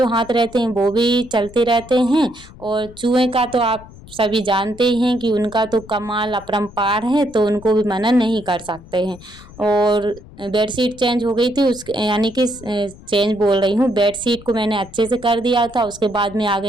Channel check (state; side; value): noise; left; rumble, 20 dB below the sound